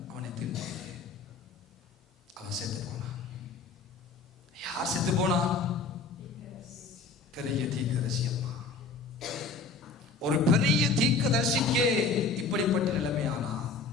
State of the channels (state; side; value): quieter; right; 4.3 dB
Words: அவனை தின்றது. அவன் செத்து போனான். யார் செத்து போனான்? பெரிய தீர்க்கதரிசி அம்மா. ஒரு பெரிய தீர்க்கதரிசிக்கே இப்படிப்பட்ட நிலைமையானா,